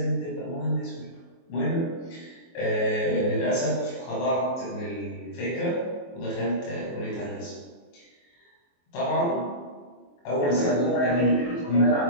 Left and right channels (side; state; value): right; late; 23 ms